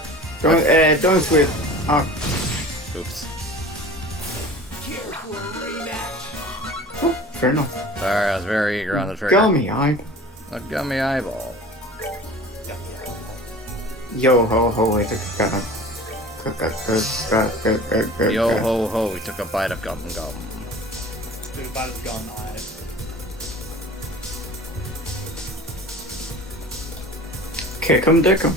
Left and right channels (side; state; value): both; normal; correlation 0.41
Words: Don't switch. Oh. Oops. Oh, fair enough. Sorry, I was very eager on the trigger. Gummy eye. A gummy eyeball. Yo ho ho, wait, Yo ho ho, we took a bite of gum gum. Dude, about his gun eye. Kick 'em, dick 'em.